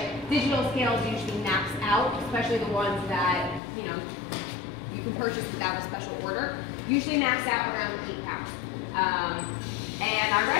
digital scales usually max out, especially the ones that you can purchase without a special order. Usually max out around 8 pounds. And our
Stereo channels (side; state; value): right; drops out; at 3.6 s